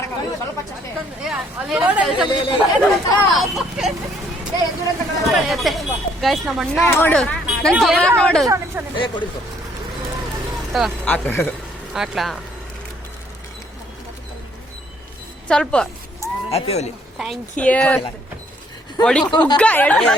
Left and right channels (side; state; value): both; normal; correlation 0.65